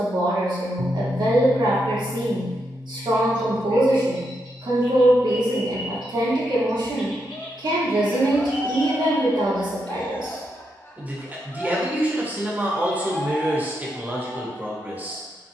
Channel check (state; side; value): normal; both; correlation 0.82